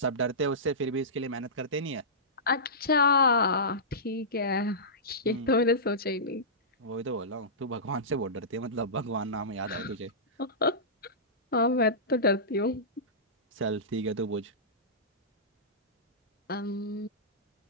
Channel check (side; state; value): both; normal; correlation -0.18